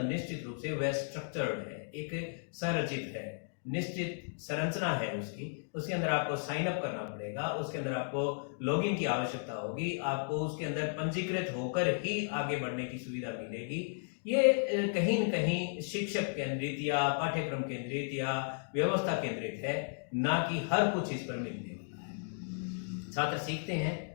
निश्चित रूप से वह स्ट्रक्चर्ड है, एक संरचित है, निश्चित संरचना है उसकी। उसके अंदर आपको साइन अप करना पड़ेगा, उसके अंदर आपको लॉगिन की आवश्यकता होगी, आपको उसके अंदर पंजीकृत होकर ही आगे बढ़ने की सुविधा मिलेगी। ये कहीं न कहीं शिक्षक केंद्रित या पाठ्यक्रम केंद्रित या व्यवस्था केंद्रित है, ना कि हर कुछ इस पर मिलने वाला है। छात्र सीखते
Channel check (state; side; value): silent; right; digital silence